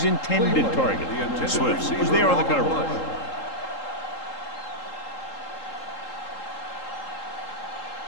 intended target. Swift was there on the coverage.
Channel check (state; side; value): late; right; 3.8 ms